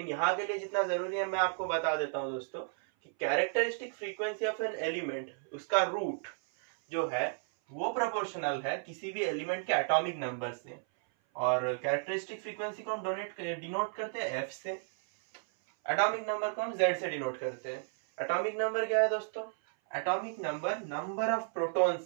यहाँ के लिए जितना जरूरी है मैं आपको बता देता हूँ दोस्तों कि characteristic frequency of an element, उसका रूट जो है वो प्रोपोर्शनल है किसी भी एलिमेंट के एटॉमिक नंबर से। और कैरेक्टरिस्टिक फ्रीक्वेंसी को हम डिनोट करते हैं एफ से, एटॉमिक नंबर को हम जेड से डिनोट करते हैं। एटॉमिक नंबर क्या है दोस्तों? Atomic number number of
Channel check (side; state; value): left; silent; 56 dB below the other